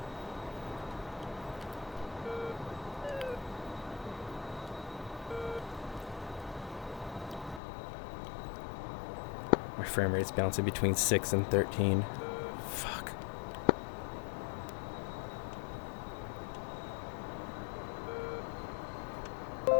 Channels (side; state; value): right; drops out; at 7.6 s